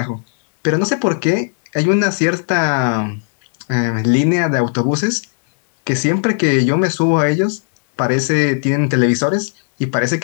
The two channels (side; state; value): right; silent; 68 dB below the other